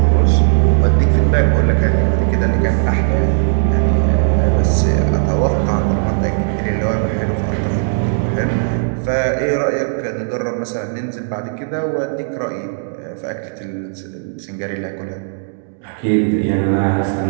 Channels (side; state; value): left; silent; digital silence